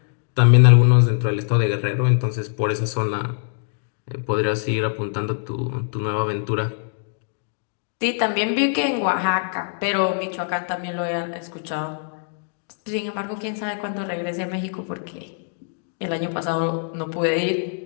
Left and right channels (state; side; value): silent; right; digital silence